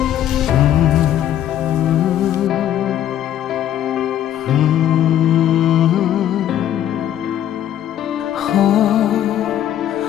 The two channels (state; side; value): quieter; right; 11.2 dB